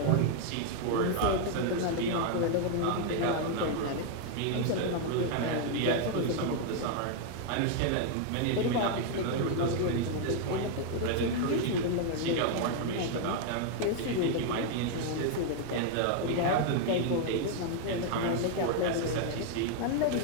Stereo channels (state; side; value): different; both; correlation 0.00